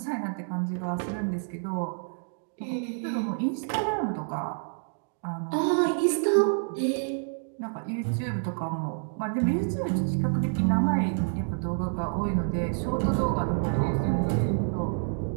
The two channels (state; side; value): silent; left; 59 dB below the other